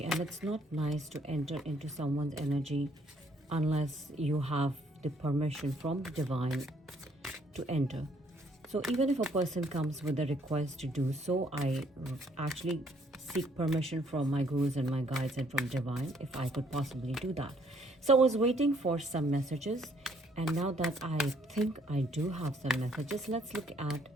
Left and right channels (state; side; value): normal; both; correlation 0.66